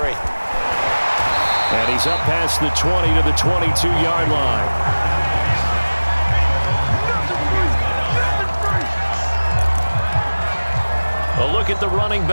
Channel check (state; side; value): inverted; both; correlation -1.00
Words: And he's up past the 20 to the 22-yard line. A look at the running